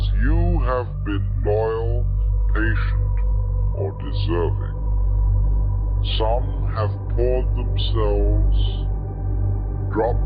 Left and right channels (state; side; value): identical; both; correlation 1.00